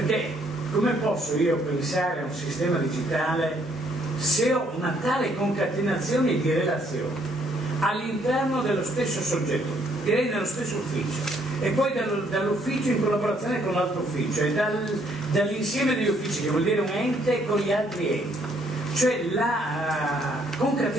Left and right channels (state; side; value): normal; both; correlation 0.67